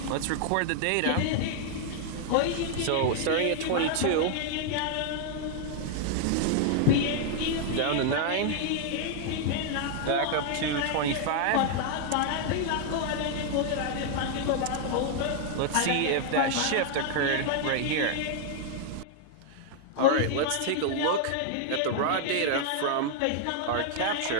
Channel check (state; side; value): different; both; correlation 0.00